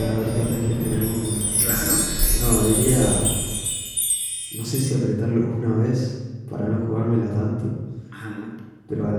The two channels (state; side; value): identical; both; correlation 1.00